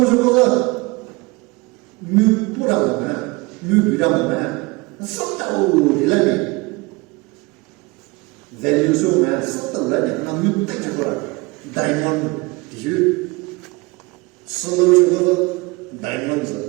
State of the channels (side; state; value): left; quieter; 25.0 dB